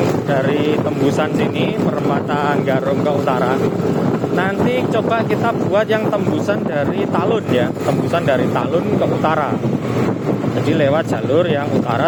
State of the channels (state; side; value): identical; both; correlation 1.00